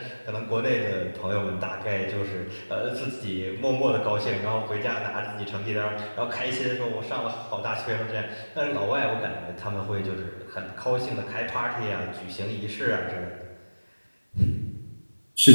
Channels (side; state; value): both; inverted; correlation -1.00